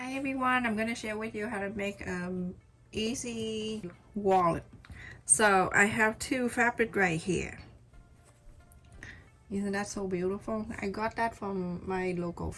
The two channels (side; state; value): both; identical; correlation 1.00